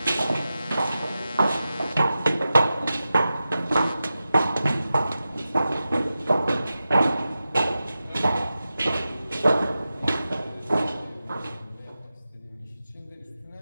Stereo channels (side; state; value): both; inverted; correlation -0.93